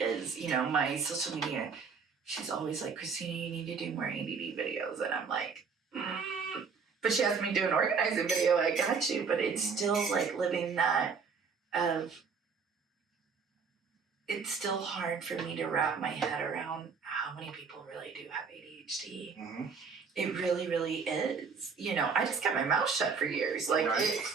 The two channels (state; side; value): quieter; left; 5.5 dB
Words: is. You know, my social media. She's always like, Christina, you need to do more ADD videos, and I'm like, But she has me do an organizing video. I got you, but it's still like living that of. It's still hard for me to wrap my head around how many people really do have ADHD. Mm-hmm. It really, really is. You know, I just kept my mouth shut for years. Like,